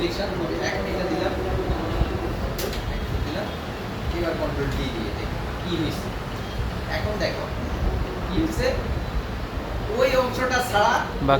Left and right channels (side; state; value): both; identical; correlation 1.00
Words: হবে। এখন এটা দিলাম, এবার কন্ট্রোল ডি দিয়ে দেখি কি হয়েছে। এখন দেখো কি হয়েছে, ওই অংশটা ছাড়া